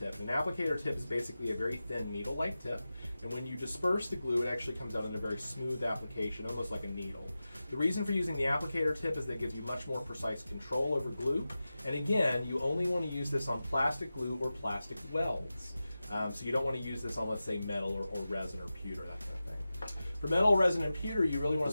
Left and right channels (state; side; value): inverted; both; correlation -0.94